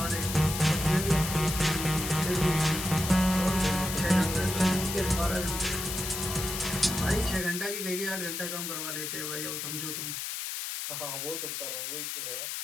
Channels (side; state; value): left; noise; hiss, 4 dB below the sound